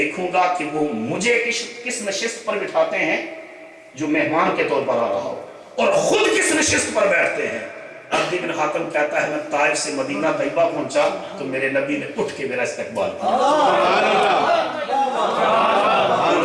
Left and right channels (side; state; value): both; identical; correlation 1.00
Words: گا کہ وہ مجھے کس نشست پر بٹھاتے ہیں جو مہمان کے طور پر آ رہا ہو، اور خود کس نشست پر بیٹھتے ہیں۔ عدی بن حاتم کہتا ہے میں طائف سے مدینہ طیبہ پہنچا تو میرے نبی نے اٹھ کے میرا استقبال کیا،